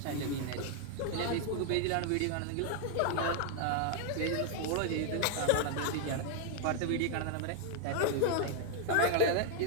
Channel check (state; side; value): different; both; correlation 0.00